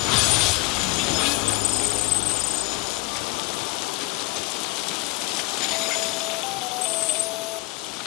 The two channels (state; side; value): quieter; right; 22.5 dB